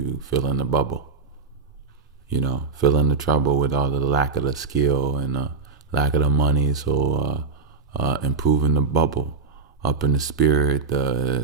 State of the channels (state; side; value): quieter; left; 4.5 dB